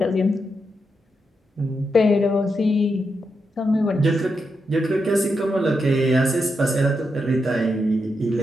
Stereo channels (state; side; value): normal; both; correlation 0.84